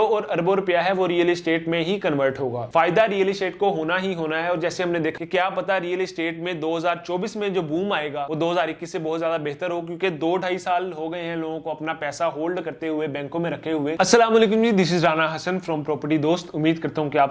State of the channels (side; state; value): both; identical; correlation 1.00